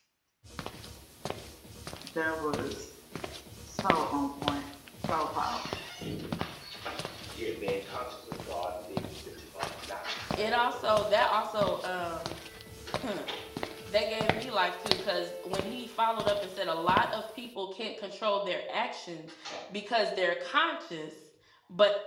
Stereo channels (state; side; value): identical; both; correlation 1.00